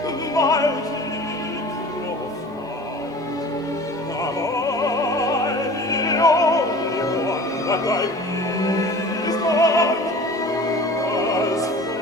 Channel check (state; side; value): normal; both; correlation 0.42